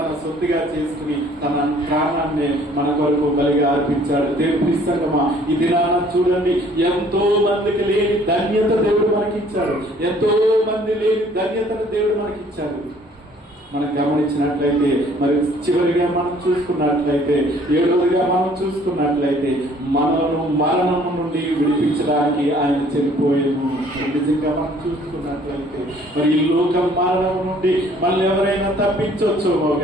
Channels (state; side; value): normal; both; correlation 0.58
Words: సొత్తుగా చేసుకుని తన ప్రాణాన్ని మన కొరకు బలిగా అర్పించాడు. దేవుని ప్రియసంగమా, ఈ దినాన చూడండి, ఎంతో మందికి లేని ధన్యత దేవుడు మనకిచ్చాడు. ఎంతో మంది లేని ధన్యతను దేవుడు మనకిచ్చాడు. మనం గమనించినట్లయితే మరి చివరిగా మనం చూసుకున్నట్లయితే 7వదిగా మనం చూసుకున్నట్లయితే మనను మరణం నుండి విడిపించడానికి ఆయన చనిపోయాము. నిజంగా మనం చూసుకున్నట్లయితే మరి ఈ లోక మరణం నుండి మళ్ళీ ఎవరైనా తప్పించవచ్చేమో